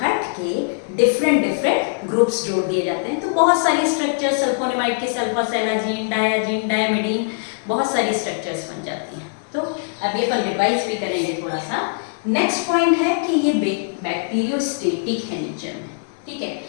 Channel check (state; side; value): silent; right; digital silence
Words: हट के डिफरेंट डिफरेंट ग्रुप्स जोड़ दिए जाते हैं। तो बहुत सारी स्ट्रक्चर सल्फोनेमाइड के, सल्फासेलाजीन, डायाजीन, डायमिडीन, बहुत सारी स्ट्रक्चर्स बन जाती हैं। तो अब ये अपन रिवाइज भी करेंगे थोड़ा सा। नेक्स्ट पॉइंट है कि ये बैक्टीरियोस्टेटिक है नेचर में, ठीक है।